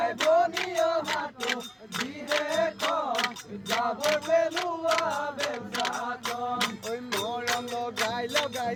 বনিয়া হাতু দিহে কম যাব পেলুৱা বেলচাখন ওই মৰম লগাই লগাই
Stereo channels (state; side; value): identical; both; correlation 1.00